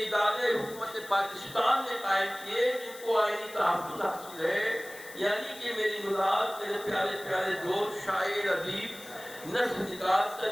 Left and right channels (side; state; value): left; noise; hiss, 17 dB below the sound